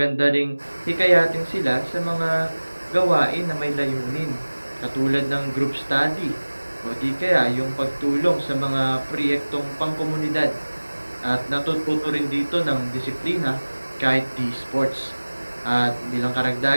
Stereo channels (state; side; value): inverted; both; correlation -1.00